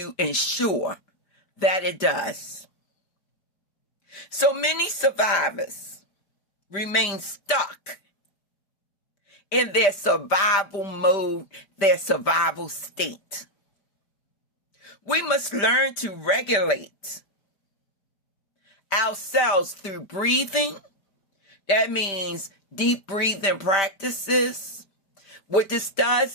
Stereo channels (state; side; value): late; right; 5.1 ms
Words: ensure that it does. So many survivors remain stuck in their survival mode, their survival state. We must learn to regulate ourselves through breathing. That means deep breathing practices. What this